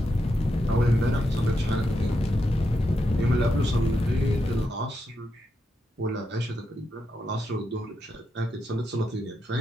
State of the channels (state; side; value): normal; both; correlation 0.84